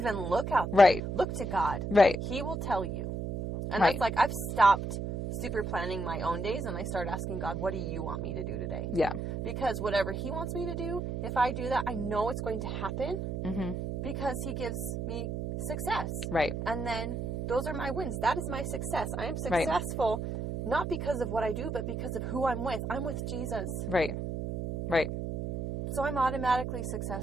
look out there. Right. Look to God. Right. He will tell you. And Right. that's like, I've stopped super planning my own days and I start asking God, what do you want me to do today? Yeah. Because whatever He wants me to do, if I do that, I know it's going to happen because He gives me success. Right. And then those are my wins. That is my success. I am successful not because of what I do, but because of who I'm with. I'm with Jesus. Right. Right. So I'm automatically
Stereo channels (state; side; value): noise; right; hum, 4 dB below the sound